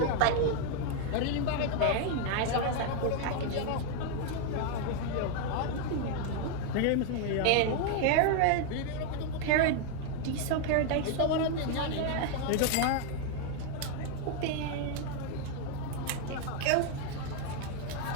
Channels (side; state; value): both; different; correlation 0.00